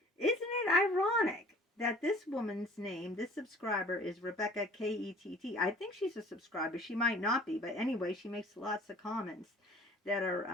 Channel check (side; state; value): both; normal; correlation 0.50